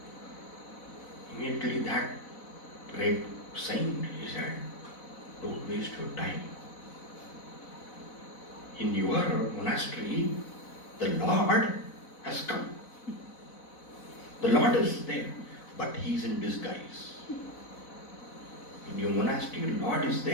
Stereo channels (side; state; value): right; late; 4.1 ms